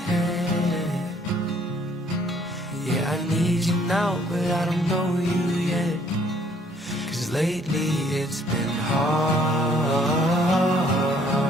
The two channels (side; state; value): both; normal; correlation 0.62